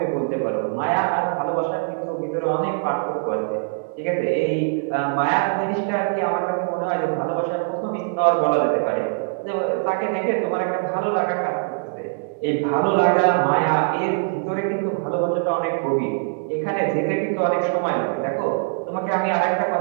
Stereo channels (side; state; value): left; silent; 64 dB below the other